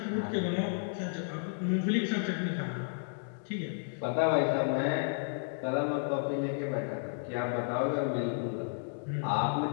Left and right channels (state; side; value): silent; right; digital silence